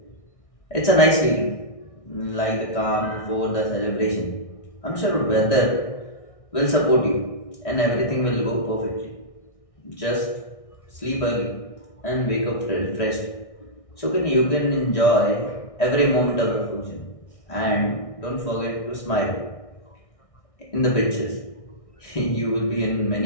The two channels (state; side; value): late; right; 1.6 ms